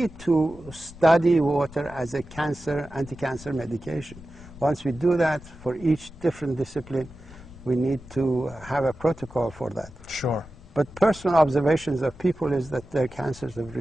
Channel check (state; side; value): noise; left; rumble, 19 dB below the sound